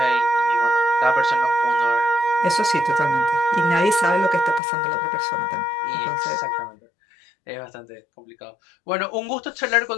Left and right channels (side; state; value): right; drops out; at 4.6 s